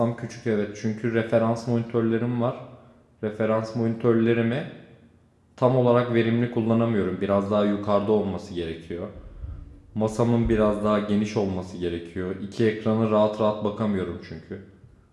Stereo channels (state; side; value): identical; both; correlation 1.00